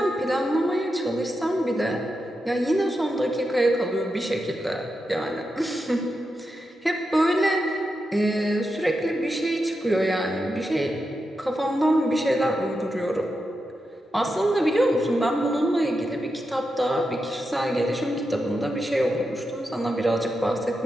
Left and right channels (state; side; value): normal; both; correlation 0.87